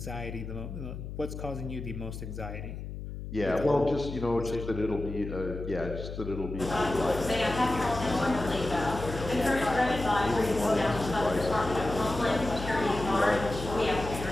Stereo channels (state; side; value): noise; left; hum, 8 dB below the sound